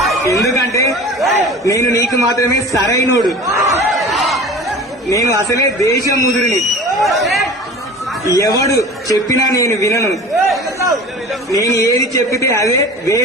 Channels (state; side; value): normal; both; correlation 0.39